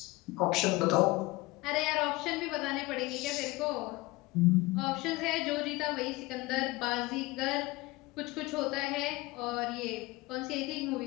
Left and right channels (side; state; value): right; quieter; 21.3 dB